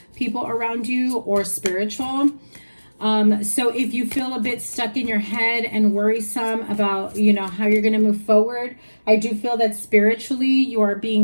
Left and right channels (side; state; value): both; inverted; correlation -1.00